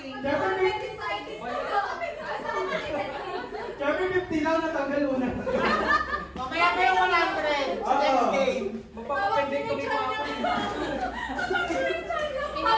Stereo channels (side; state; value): both; identical; correlation 1.00